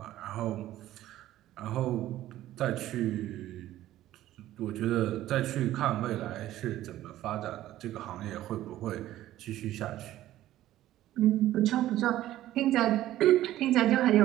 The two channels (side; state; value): left; quieter; 14.1 dB